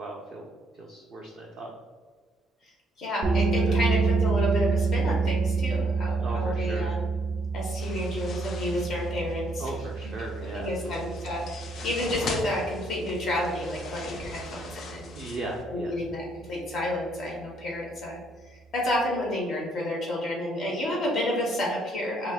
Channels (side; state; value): both; normal; correlation 0.70